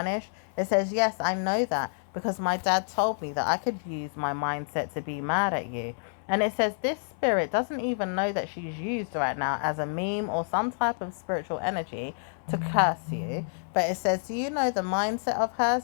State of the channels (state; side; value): silent; right; 59 dB below the other